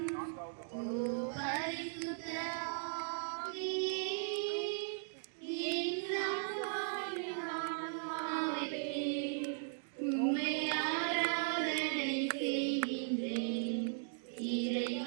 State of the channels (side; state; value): left; silent; digital silence